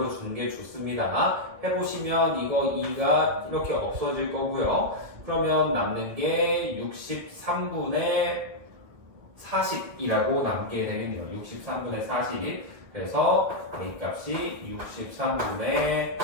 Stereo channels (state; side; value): late; left; 1.7 ms